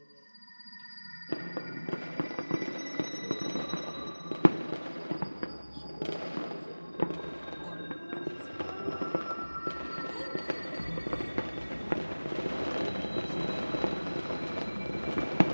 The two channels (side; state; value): both; inverted; correlation -1.00